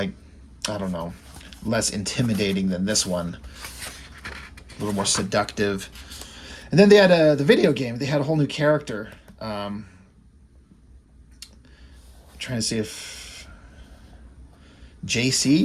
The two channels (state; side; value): identical; both; correlation 1.00